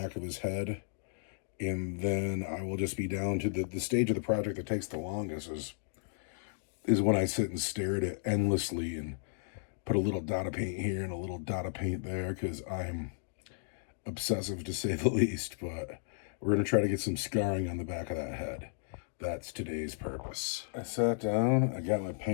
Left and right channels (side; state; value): right; silent; digital silence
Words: of his head. And then I will just be down to the stage of the project that takes the longest is when I sit and stare at it endlessly and put a little dot of paint here and a little dot of paint there because I'm obsessive to say the least. But we're going to try to get some scarring on the back of that head. That's today's purpose. I sat down, I got my